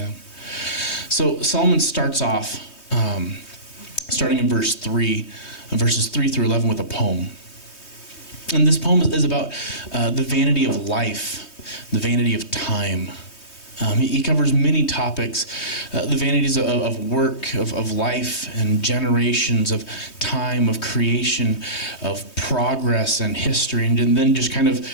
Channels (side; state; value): right; late; 3.2 ms